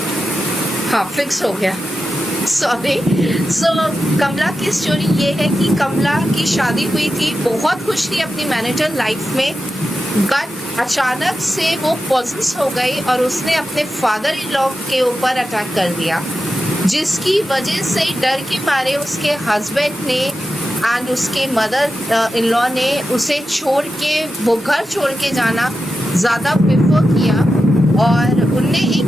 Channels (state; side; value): normal; both; correlation 0.91